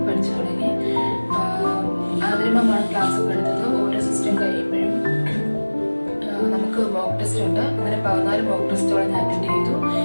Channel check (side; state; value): both; inverted; correlation -1.00